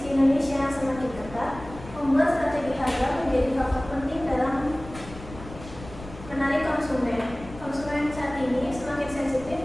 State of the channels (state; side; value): noise; left; rumble, 15 dB below the sound